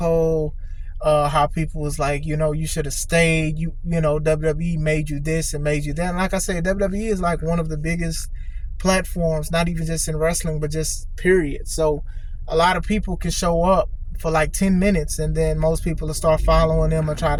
how people was like, you know, you should have stayed. You know, WWE made you this and made you that. And like I said, WWE is like one of the biggest platforms, not even just in wrestling, but just period. So a lot of people can show up for like 10 minutes and then most people will start following them and try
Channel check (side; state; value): both; identical; correlation 1.00